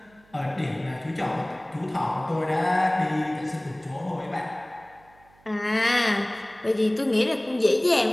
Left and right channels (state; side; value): noise; right; hum, 29 dB below the sound